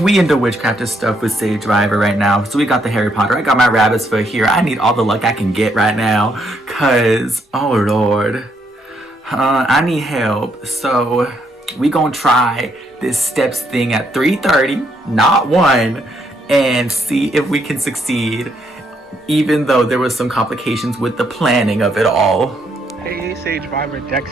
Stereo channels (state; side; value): normal; both; correlation 0.74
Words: we into witchcraft and stuff with Sagevivor right now. So we got the Harry Potter. I got my rabbit's foot here. I need all the luck I can get right now. Cause, oh Lord. I need help. So we gonna try this steps thing at 3:30, not 1, and see if we can succeed. Even though there was some complications with the planning of it all. Hey, Sagevivor, Dex